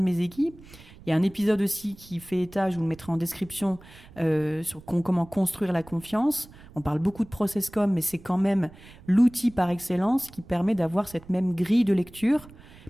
équipes. Il y a un épisode aussi qui fait état, je vous le mettrai en description, sur comment construire la confiance. On parle beaucoup de process-com, mais c'est quand même l'outil par excellence qui permet d'avoir cette même grille de lecture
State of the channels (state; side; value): noise; right; rumble, 21 dB below the sound